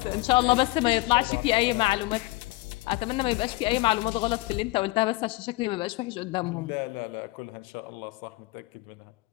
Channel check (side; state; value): right; quieter; 21.3 dB